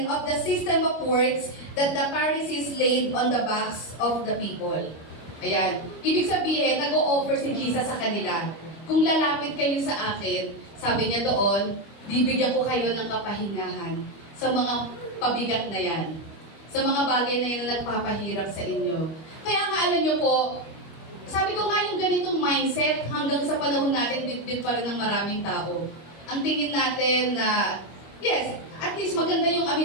of the system of works that the Pharisees laid on the backs of the people. Ayan. Ibig sabihin, nag-o-offer si Jesus sa kanila. Kung lalapit kayo sa akin, sabi niya doon, bibigyan ko kayo ng kapahingahan sa mga pabigat na yan. Sa mga bagay na yan na nagpapahirap sa inyo. Kaya nga alam niyo po, sabi ko nga yung ganitong mindset, hanggang sa panahon natin, bit-bit pa rin ng maraming tao. Ang tingin natin na, yes, at least maganda yung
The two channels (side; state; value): right; late; 25 ms